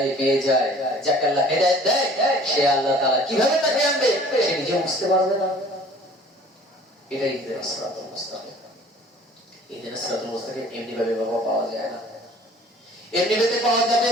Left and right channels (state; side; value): normal; both; correlation 0.50